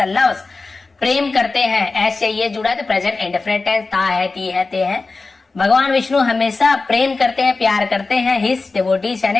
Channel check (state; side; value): quieter; right; 3.8 dB